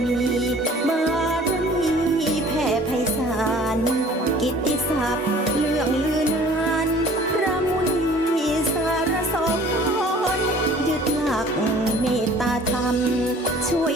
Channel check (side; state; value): both; normal; correlation 0.50